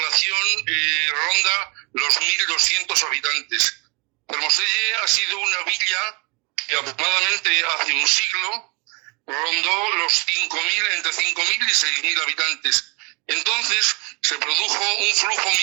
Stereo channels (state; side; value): quieter; left; 30.4 dB